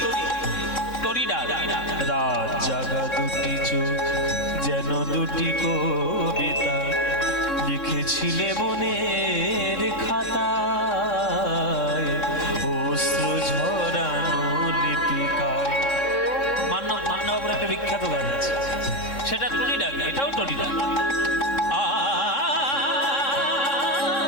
টরি ডাক। রাত জাগা দুটি চোখ যেন দুটি কবিতা লিখেছিলে মনের খাতায়, অশ্রু ঝরানো লিপিকায়। মান্যবাবুর একটা বিখ্যাত গান আছে, সেটা টরি ডাক, এটাও টরি ডাক।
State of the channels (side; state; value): right; late; 3.7 ms